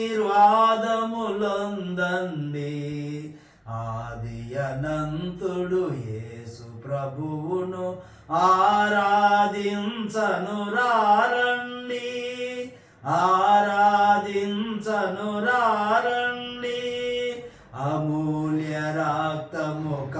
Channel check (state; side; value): identical; both; correlation 1.00